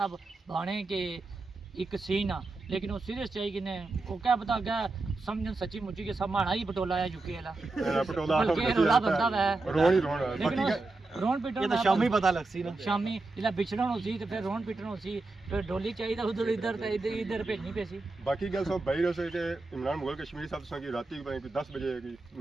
बाणे के एक सीन आ लेकिन वो सीरियस चाहिए कि ने वो क्या पता क्या समझन सच्ची मुच्ची के सब माना ही पटोला है यूके वाला पटोला रोला बंदा है रोन ही रोन लेकिन रोन पीटन ये तो शामी पता लग सी ना शामी जिला बिछड़न होसी तो फिर रोन पीटन होसी फिर डोली चाहिए उधर इधर तो इधर भेजनी पैसी बाकी गल सब बाहर से के इमरान मुगल कश्मीरी साहब से राती 10 बजे की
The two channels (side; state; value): left; quieter; 3.3 dB